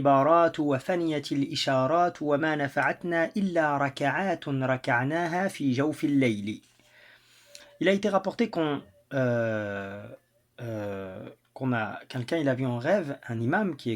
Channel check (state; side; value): identical; both; correlation 1.00